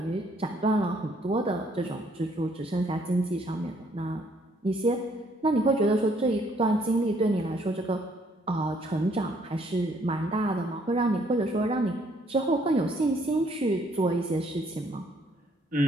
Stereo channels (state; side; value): normal; both; correlation 0.66